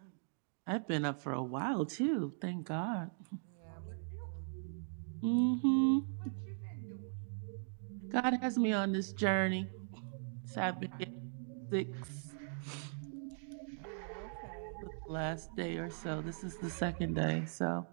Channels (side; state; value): left; silent; digital silence